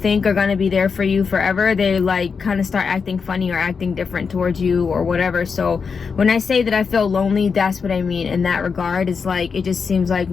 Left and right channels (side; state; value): right; quieter; 5.6 dB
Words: are gonna be there for you forever, they like kind of start acting funny or acting different towards you or whatever. So when I say that I feel lonely, that's what I mean in that regard. It's like it just seems like